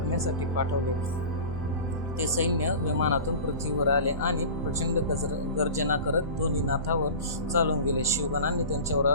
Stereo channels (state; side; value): inverted; both; correlation -0.35